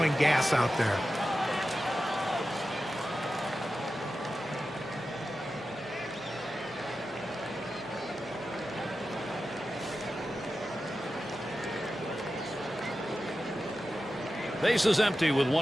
gas out there. Base is empty with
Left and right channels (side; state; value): both; normal; correlation 0.92